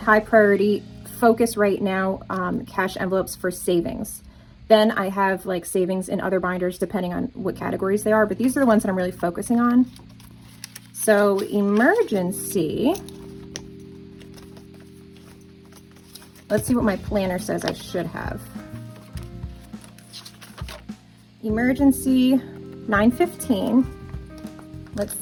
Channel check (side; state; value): both; identical; correlation 1.00